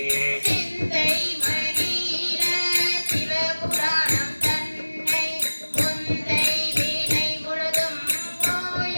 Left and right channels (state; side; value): inverted; both; correlation -1.00